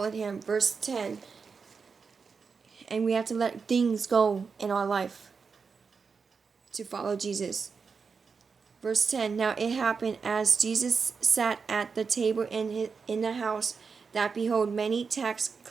him. Verse 10. And we have to let things go in our life to follow Jesus. Verse 10. Now it happened as Jesus sat at the table in the house, that behold, many tax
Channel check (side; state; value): left; quieter; 5.3 dB